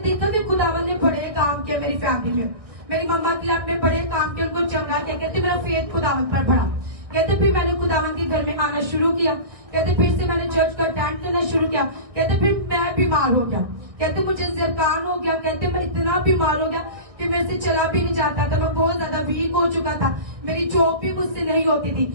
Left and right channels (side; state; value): left; late; 1.6 ms